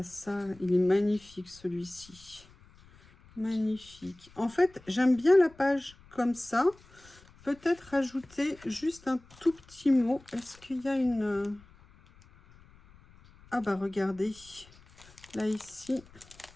ça. Il est magnifique celui-ci. Magnifique. En fait, j'aime bien la page comme ça. Peut-être rajouter juste un tout petit mot. Est-ce qu'il y a une... Ah bah regardez. Là, ici,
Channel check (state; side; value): noise; left; rumble, 25 dB below the sound